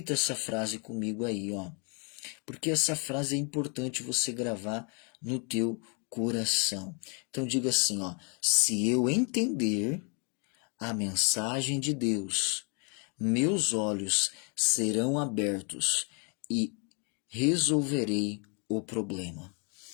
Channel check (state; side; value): quieter; right; 36.3 dB